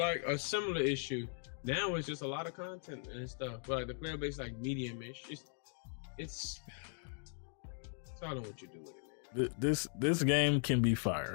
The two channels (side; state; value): right; silent; 52 dB below the other